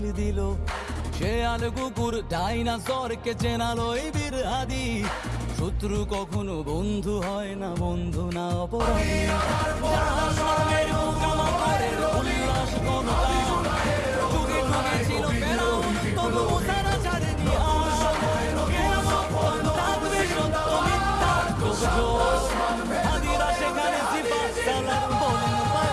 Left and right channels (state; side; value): identical; both; correlation 1.00